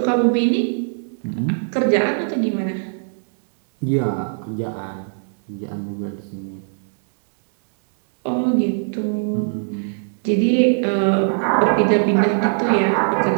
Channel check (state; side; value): silent; left; digital silence